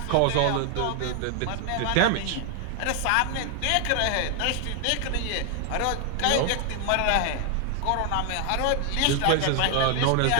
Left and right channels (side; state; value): both; different; correlation 0.00